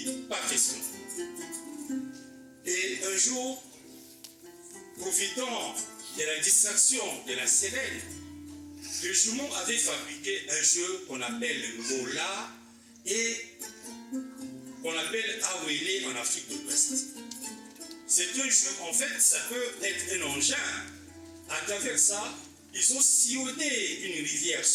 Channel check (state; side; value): identical; both; correlation 1.00